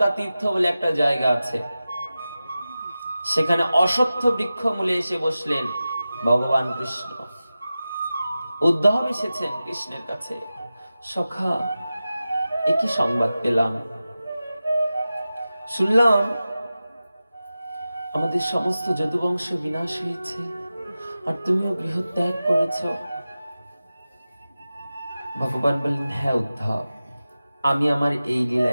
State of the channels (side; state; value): both; inverted; correlation -0.94